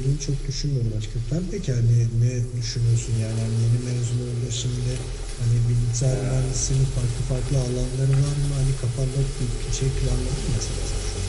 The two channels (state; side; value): identical; both; correlation 1.00